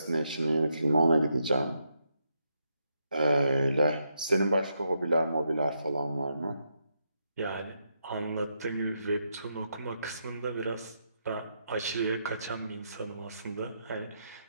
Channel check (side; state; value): both; inverted; correlation -0.81